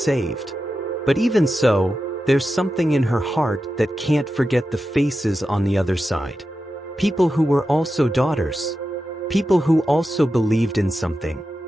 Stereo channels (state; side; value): normal; both; correlation 0.91